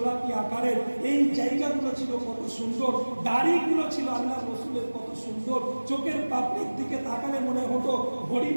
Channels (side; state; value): both; inverted; correlation -1.00